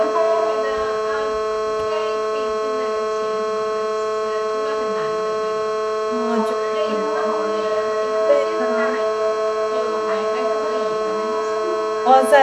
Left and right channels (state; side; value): identical; both; correlation 1.00